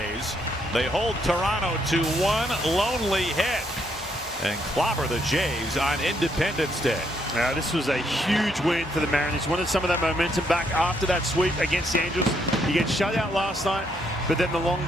They hold Toronto to one lonely hit and clobber the Jays on Independence Day. Now, this was a huge win for the Mariners. Wanted some of that momentum back after that sweep against the Angels. He gets shut out last night, but then the long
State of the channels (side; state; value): both; normal; correlation 0.74